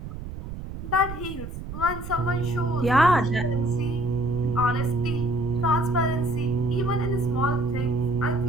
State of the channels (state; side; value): noise; right; rumble, 9 dB below the sound